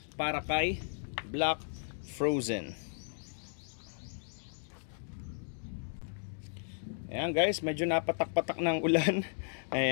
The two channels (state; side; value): silent; right; digital silence